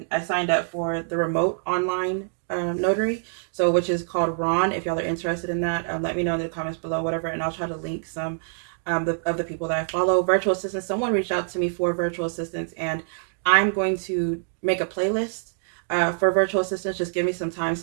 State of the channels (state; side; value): silent; left; digital silence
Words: I signed up for the remote online notary, so which is called Ron. If y'all are interested in that, let me know in the comments below, whatever, and I'll try to link some of the people that I follow. Virtual assistants, someone reached out to me for virtual assistants, and I'm going to make a playlist for virtual assistants. Just give me some time